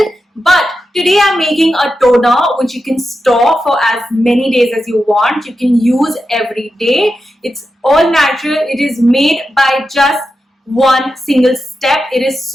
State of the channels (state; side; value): normal; both; correlation 0.89